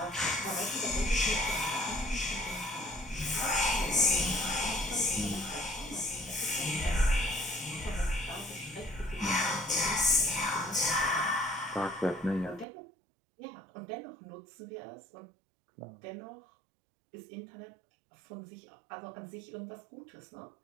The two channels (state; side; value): drops out; left; at 12.7 s